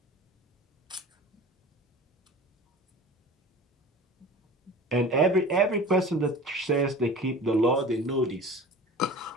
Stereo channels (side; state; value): both; normal; correlation 0.39